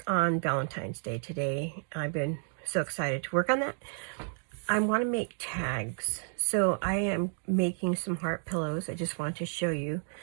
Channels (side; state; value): left; silent; 56 dB below the other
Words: on Valentine's Day today. I've been so excited to work on that. I want to make tags. So I am making some heart pillows. I just want to show you.